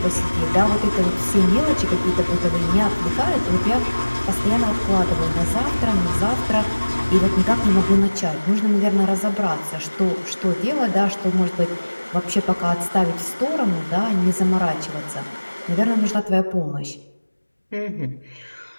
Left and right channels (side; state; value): both; inverted; correlation -1.00